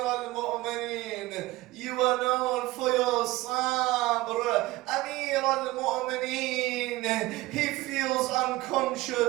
You are known for your sabr. Amir al-Mu'mineen, he feels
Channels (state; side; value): quieter; left; 19.0 dB